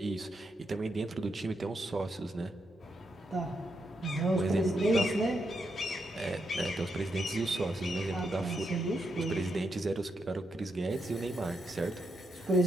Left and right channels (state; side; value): normal; both; correlation 0.82